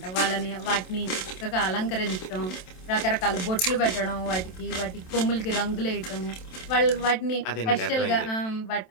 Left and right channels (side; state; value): right; late; 27 ms